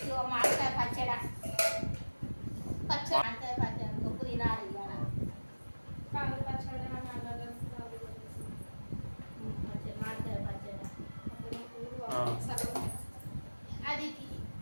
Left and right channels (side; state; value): both; inverted; correlation -1.00